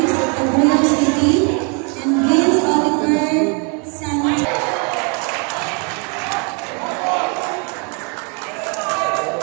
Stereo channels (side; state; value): left; quieter; 36.0 dB